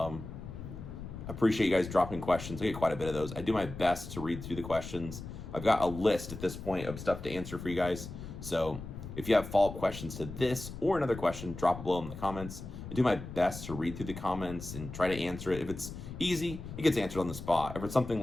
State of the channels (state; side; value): noise; left; rumble, 10 dB below the sound